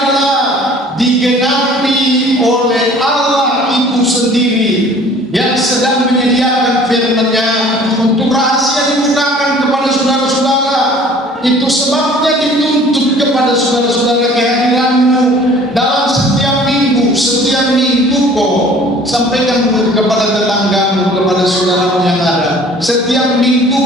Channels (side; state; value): both; normal; correlation 0.50